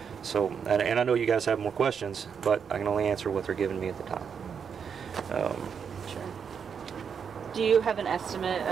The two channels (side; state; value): left; quieter; 6.9 dB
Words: So, and I know you guys have more questions, but I can only answer what they're giving me at the time. Sure. Do you have an estimate